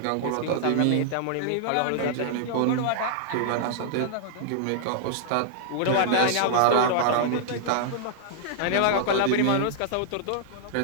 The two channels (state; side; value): different; both; correlation -0.01